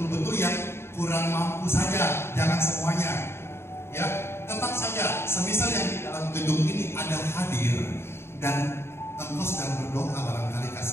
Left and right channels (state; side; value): late; right; 0.12 ms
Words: yang kurang mampu saja, jangan semuanya. Ya, tetap saja, semisal yang di dalam gedung ini ada hadir dan engkau sedang berdoa barangkali